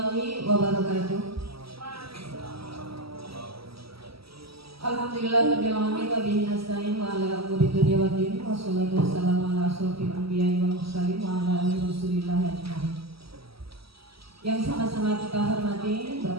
wabarakatuh. Alhamdulillahirabbil alamin wa bihi nasta'in wa ala umuri dunya waddin wa sholatu wassalamu ala asyrofil anbiya'i wal mursalin wa ala alihi wasallam ajmain. Yang sama-sama kita hormati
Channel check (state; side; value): late; left; 0.76 ms